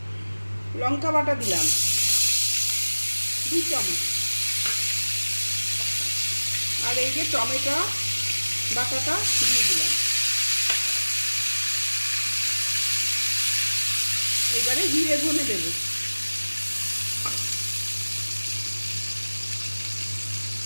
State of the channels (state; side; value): inverted; both; correlation -1.00